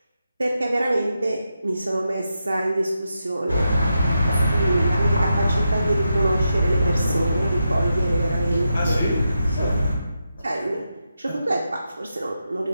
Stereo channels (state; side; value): inverted; both; correlation -0.86